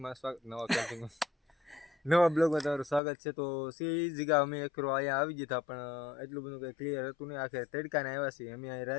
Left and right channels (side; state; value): right; drops out; at 3.0 s